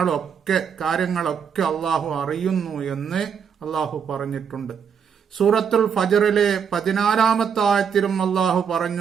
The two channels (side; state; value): left; quieter; 7.2 dB